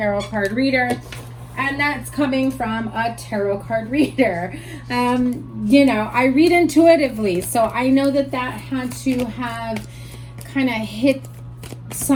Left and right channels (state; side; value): identical; both; correlation 1.00